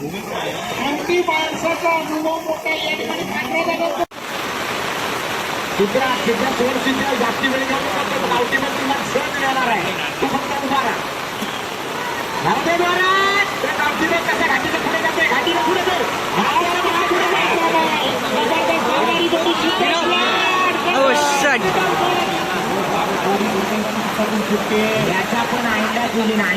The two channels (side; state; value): both; identical; correlation 1.00